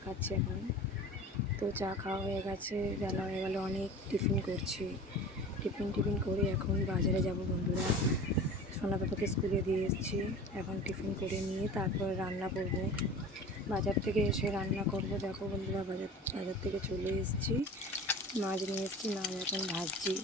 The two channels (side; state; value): both; normal; correlation 0.37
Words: খাচ্ছি এখন। তো চা খাওয়া হয়ে গেছে, বেলা হয়ে গেল অনেক। টিফিন করছি, টিফিন করে এখন বাজারে যাব বন্ধুরা। সোনা পাপাকে স্কুলে দিয়ে এসেছি, এখন টিফিন করে নিয়ে তারপর রান্না করব। বাজার থেকে এসে রান্না করব। দেখো বন্ধুরা, বাজার থেকে চলে এসেছি, মাছ নিয়ে এসেছি, মাছ এখন ভাজছি।